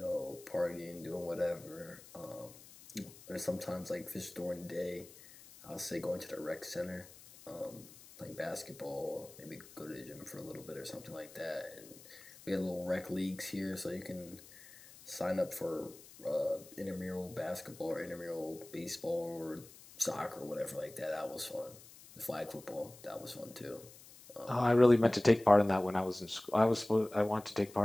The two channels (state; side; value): noise; left; hiss, 20 dB below the sound